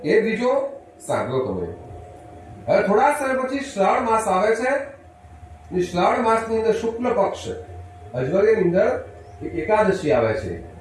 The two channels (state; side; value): identical; both; correlation 1.00